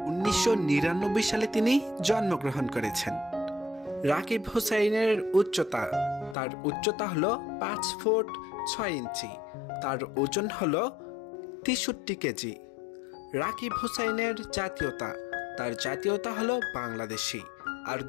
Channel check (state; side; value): drops out; right; at 6.4 s